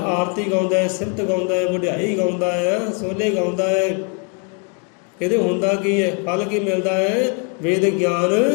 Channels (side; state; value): right; quieter; 36.4 dB